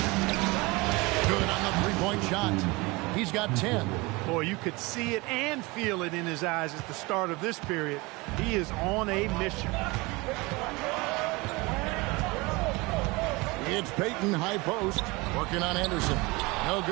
Good on the three-point shot. He's got 10. Boy, you could see it and feel it in his eyes at the start of this period. He is on a mission. It's Payton, high post, working on Anderson. No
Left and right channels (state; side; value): quieter; left; 24.3 dB